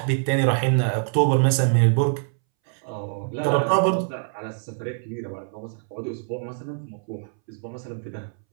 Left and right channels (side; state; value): left; silent; 62 dB below the other